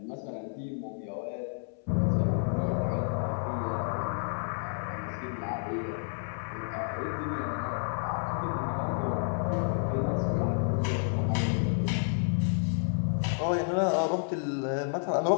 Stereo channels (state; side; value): silent; right; 58 dB below the other